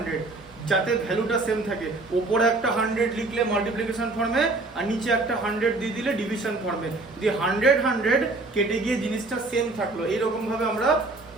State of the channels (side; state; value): left; quieter; 3.2 dB